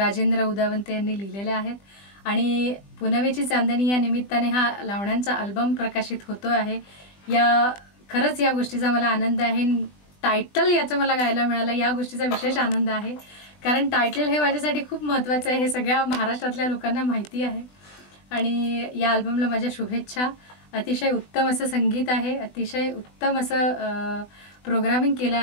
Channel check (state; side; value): late; right; 20 ms